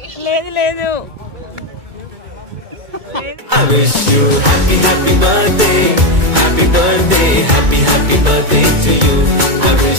లేదు లేదు. I wish you happy birthday, happy birthday, happy birthday to you. I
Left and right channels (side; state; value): left; late; 2.2 ms